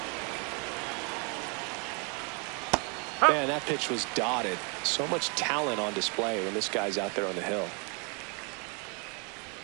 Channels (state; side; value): quieter; left; 34.7 dB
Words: Man, that pitch was dotted. So much talent on display when this guy's out there on the hill.